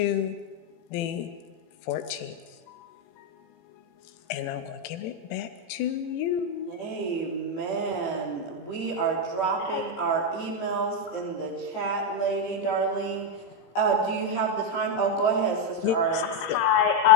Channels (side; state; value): right; late; 18 ms